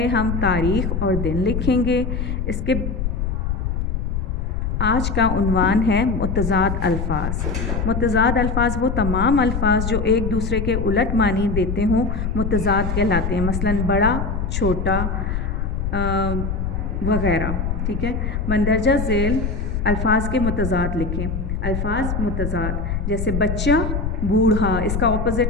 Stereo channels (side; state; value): left; noise; rumble, 2 dB below the sound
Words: ہم تاریخ اور دن لکھیں گے. اس کے آج کا عنوان ہے متضاد الفاظ. متضاد الفاظ وہ تمام الفاظ جو ایک دوسرے کے الٹ معنی دیتے ہوں متضاد کہلاتے ہیں. مثلاً بڑا، چھوٹا وغیرہ. ٹھیک ہے. مندرجہ ذیل الفاظ کے متضاد لکھیں. الفاظ متضاد جیسے بچہ، بوڑھا، اس کا